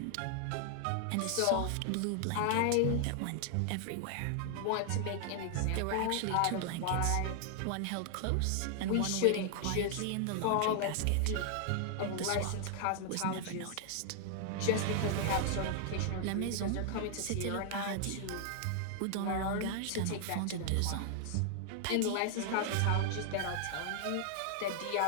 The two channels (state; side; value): different; both; correlation 0.00